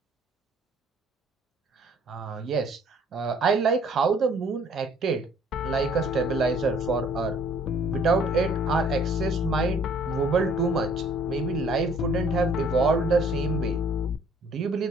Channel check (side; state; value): both; normal; correlation 0.58